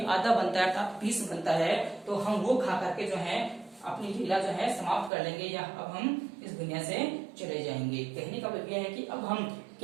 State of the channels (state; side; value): drops out; left; at 5.1 s